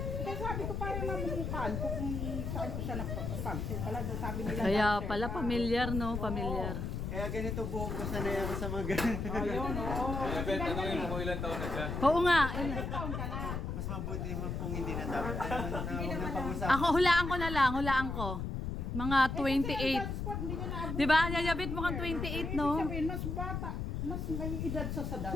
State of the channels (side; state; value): left; noise; rumble, 3 dB below the sound